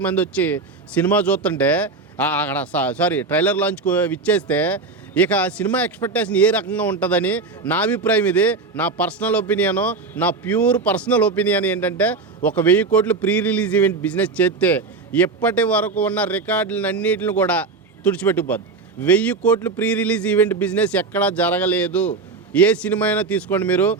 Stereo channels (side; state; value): left; quieter; 4.1 dB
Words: మంది వచ్చి సినిమా చూస్తుంటే అక్కడ సారీ ట్రైలర్ లాంచ్కు విచ్చేస్తే ఇక సినిమా ఎక్స్పెక్టేషన్ ఏ రకంగా ఉంటుందని నా అభిప్రాయం. ఇది నా పర్సనల్ ఒపీనియను, నా ప్యూర్ పర్సనల్ ఒపీనియన్ ఏంటంటే ఒక 1000 కోట్లు ప్రీ రిలీజ్ ఈవెంట్ బిజినెస్ చేస్తే ఇప్పటి వరకు ఉన్న రికార్డులన్నిటిని కూడా తుడిచిపెట్టుకుపోద్ది. 1000 కోట్లు ప్రీ రిలీజ్ ఈవెంట్ బిజినెస్ ఎక్కడా జరగలేదు. ఏ సినిమా అయినా తీసుకోండి మీరు,